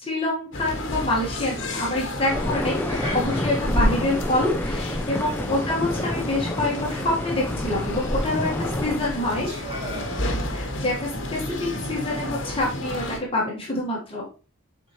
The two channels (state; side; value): normal; both; correlation 0.32